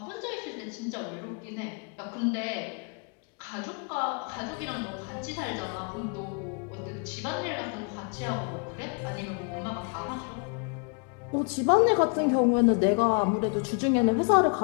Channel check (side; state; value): right; quieter; 38.2 dB